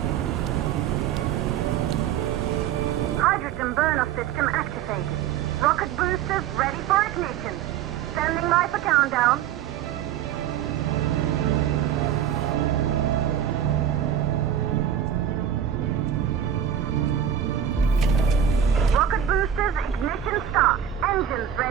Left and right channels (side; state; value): left; quieter; 9.5 dB